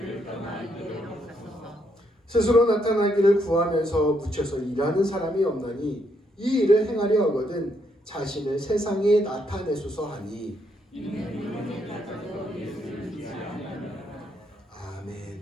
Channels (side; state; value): both; normal; correlation 0.75